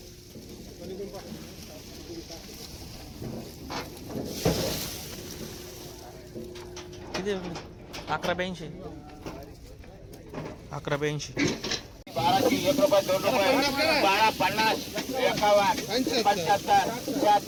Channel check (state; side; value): identical; both; correlation 1.00